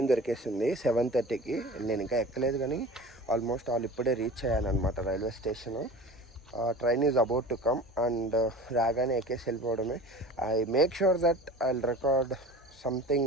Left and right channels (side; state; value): both; normal; correlation 0.38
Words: దొరికేసింది 7:30కి. నేను ఇంకా ఎక్కలేదు కానీ ఆల్మోస్ట్ ఇప్పుడే రీచ్ అయ్యానమాట railway station. Train is about to come and రాగానే ఎక్కేసి వెళ్ళిపోవడమే. I make sure that I will record